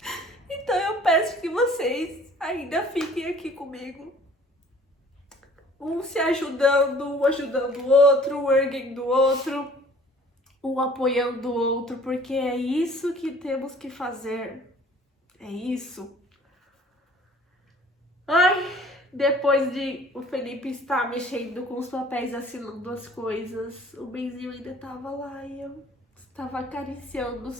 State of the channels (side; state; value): both; normal; correlation 0.52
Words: Então eu peço que vocês ainda fiquem aqui comigo. Um se ajudando, um ajudando o outro, um erguendo o outro, um apoiando o outro, porque é isso que temos que fazer. É isso. Ai, depois de o Felipe estar mexendo com os papéis, assinando as coisas, o Benzinho ainda estava lá e eu estava acariciando